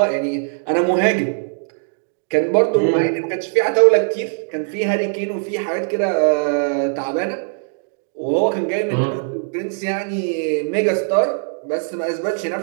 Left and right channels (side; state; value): left; silent; digital silence